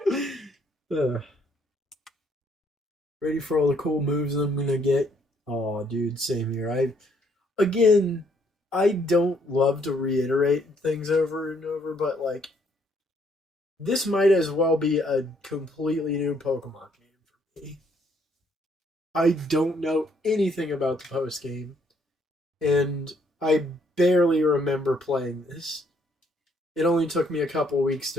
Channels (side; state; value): both; normal; correlation 0.68